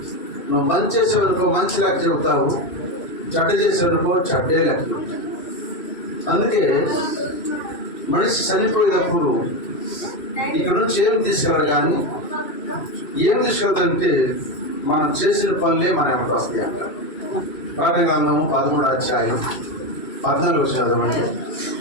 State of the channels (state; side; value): late; right; 2.6 ms